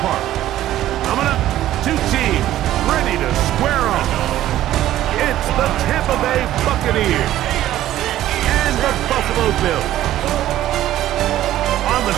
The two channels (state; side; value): quieter; left; 13.5 dB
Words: Park. Coming up, two teams ready to square off. It's the Tampa Bay Buccaneers and the Buffalo Bills. On the